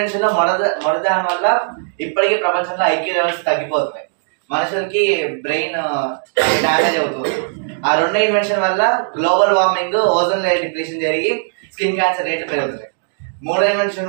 మొదటి దాని వల్ల ఇప్పటికీ ప్రపంచంలో ఐక్యూ లెవెల్స్ తగ్గిపోతున్నాయి, మనుషులకి బ్రెయిన్ డ్యామేజ్ అవుతుంది. ఆ 2 ఇన్వెన్షన్ వల్ల global warming, ozone layer depletion జరిగి స్కిన్ క్యాన్సర్ రేట్లు పెరుగుతున్నాయి. 3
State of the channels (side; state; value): left; silent; digital silence